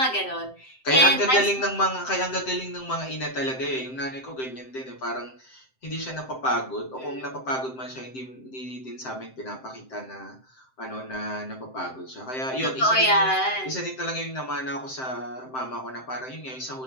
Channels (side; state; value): right; late; 7.7 ms